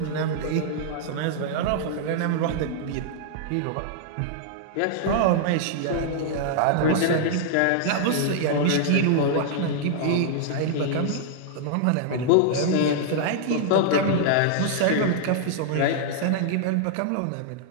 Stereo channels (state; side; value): different; both; correlation -0.01